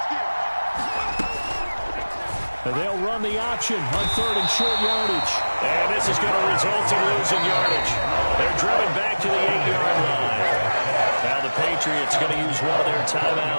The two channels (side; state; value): both; inverted; correlation -1.00